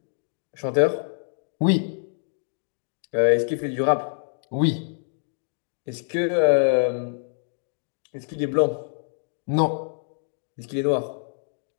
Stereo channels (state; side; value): silent; right; digital silence